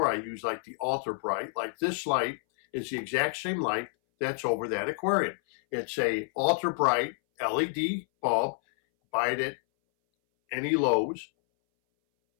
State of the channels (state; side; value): silent; right; 59 dB below the other